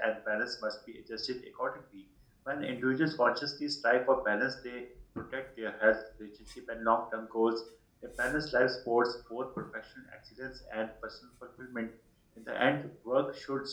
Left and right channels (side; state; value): both; identical; correlation 1.00